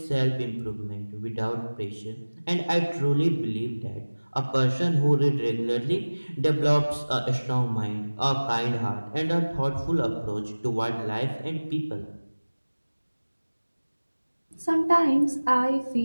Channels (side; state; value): both; inverted; correlation -1.00